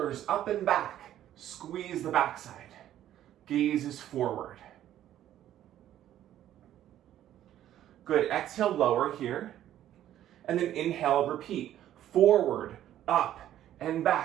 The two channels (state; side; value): quieter; left; 12.0 dB